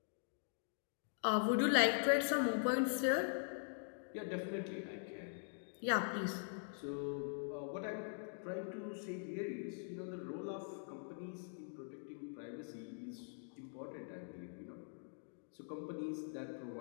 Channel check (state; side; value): silent; right; digital silence